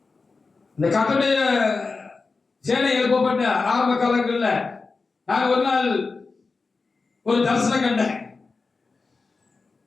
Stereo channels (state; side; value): quieter; right; 4.2 dB